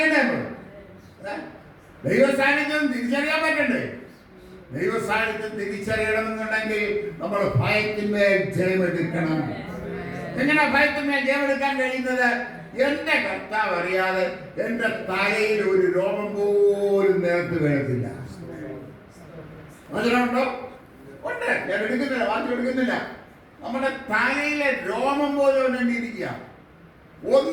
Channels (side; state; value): both; identical; correlation 1.00